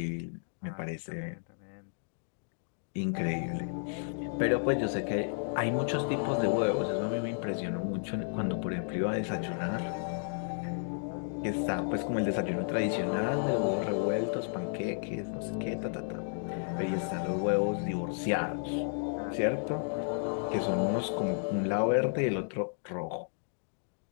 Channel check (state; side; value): silent; right; digital silence